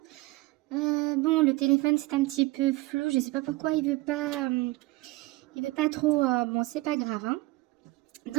Bon, le téléphone c'est un petit peu flou, je sais pas pourquoi il veut pas trop. Bon, c'est pas grave, hein.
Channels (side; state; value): left; quieter; 20.8 dB